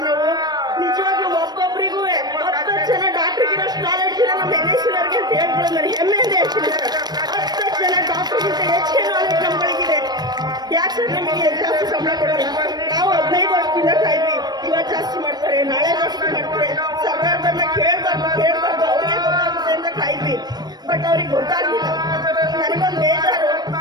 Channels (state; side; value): late; left; 0.19 ms